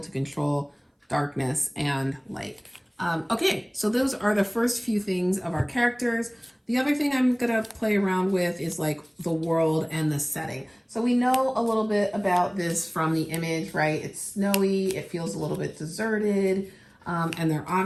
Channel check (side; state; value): both; identical; correlation 1.00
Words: to control darkness and light. Okay, so those are the first few things of our characters. The other thing I'm gonna play around with is like the world and the setting. So we know a little bit about this from the image, right? It's snowy, it feels a little bit deserted, and they're